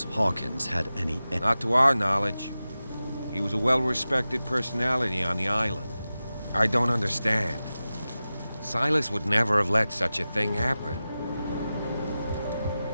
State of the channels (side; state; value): both; inverted; correlation -0.94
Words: Hawkins had any... Not to our knowledge. He was a well-respected personality on the island. I don't understand. Silas would never have let such a thing happen.